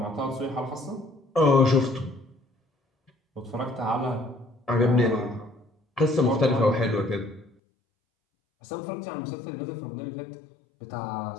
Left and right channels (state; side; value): drops out; right; at 7.5 s